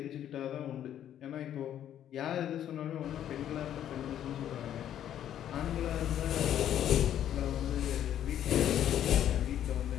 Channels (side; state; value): right; quieter; 10.7 dB